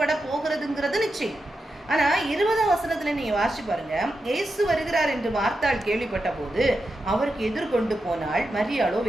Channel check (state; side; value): normal; both; correlation 0.88